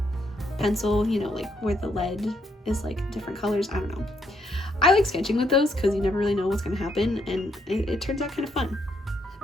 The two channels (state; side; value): normal; both; correlation 0.75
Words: pencil, you know, like where the lead is like different colors. I don't know. I like sketching with those because you never really know what's gonna happen, and it turns out kind of fun.